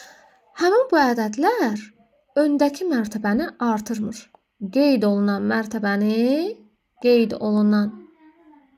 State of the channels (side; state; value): both; identical; correlation 1.00